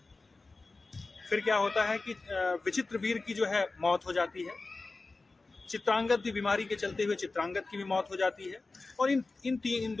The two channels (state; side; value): quieter; right; 3.6 dB